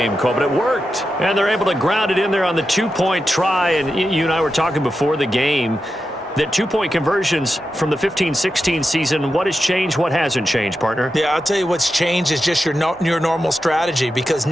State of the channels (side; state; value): both; normal; correlation 0.89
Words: call, but it worked. And they're able to ground it in there on the two-point try. And you and I were talking before the game that two-point conversions from the 15-16 season, what has changed, what hasn't changed, partner? Yeah, I'll tell you what's changed is just your normal strategy, because